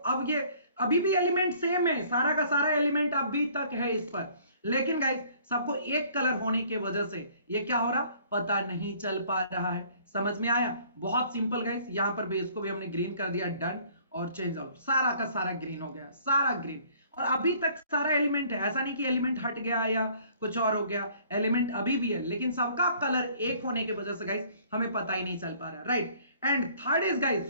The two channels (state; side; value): inverted; both; correlation -0.56